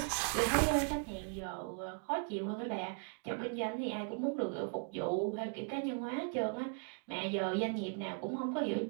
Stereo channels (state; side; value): quieter; left; 39.3 dB